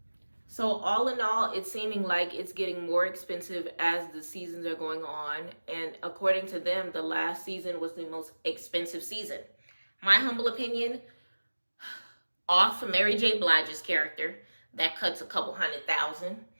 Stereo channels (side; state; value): both; inverted; correlation -1.00